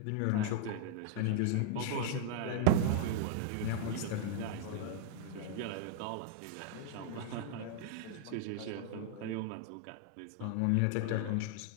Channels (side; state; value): both; different; correlation -0.01